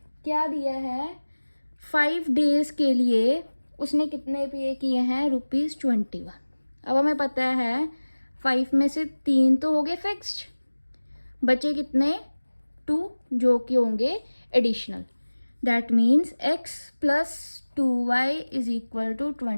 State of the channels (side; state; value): both; inverted; correlation -1.00